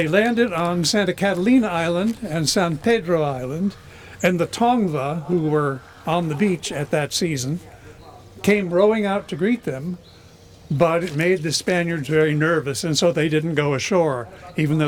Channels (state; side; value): identical; both; correlation 1.00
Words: landed on Santa Catalina Island and San Pedro Island, and the Tongva, who were on the beach at that season, came rowing out to greet them, but it made the Spaniards very nervous, and so they didn't go ashore. Even though